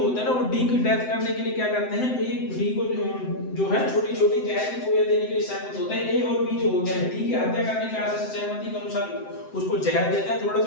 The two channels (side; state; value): right; late; 7.8 ms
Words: हैं ना, वो डी की डेथ करने के लिए क्या करते हैं, ए डी को जो है छोटी छोटी जहर की गोलियां देने के लिए सहमत होते हैं। ए और बी जो होते हैं डी की हत्या करने के आशय से सहमति के अनुसार उसको जहर देते हैं थोड़ा